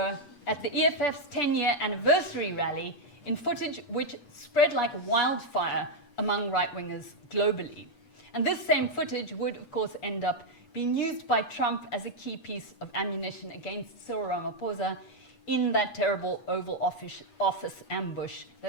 at the EFF's 10-year anniversary rally in footage which spread like wildfire among right-wingers globally. And this same footage would, of course, end up being used by Trump as a key piece of ammunition against Cyril Ramaphosa in that terrible Oval Office ambush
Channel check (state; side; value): late; right; 8.3 ms